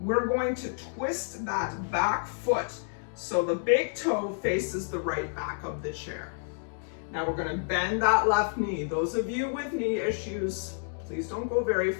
We're going to twist that back foot so the big toe faces the right back of the chair. Now we're gonna bend that left knee. Those of you with knee issues, please don't go very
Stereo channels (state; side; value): silent; right; digital silence